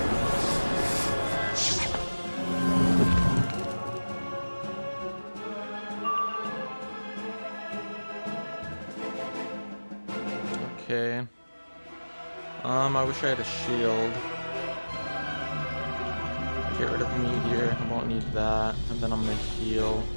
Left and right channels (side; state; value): both; inverted; correlation -1.00